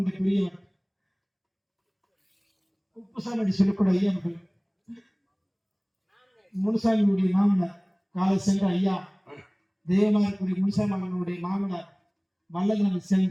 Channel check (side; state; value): both; identical; correlation 1.00